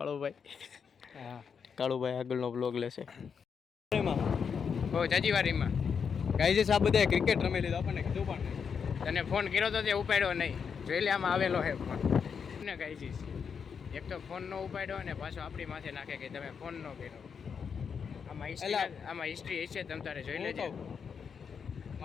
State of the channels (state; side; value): quieter; right; 6.5 dB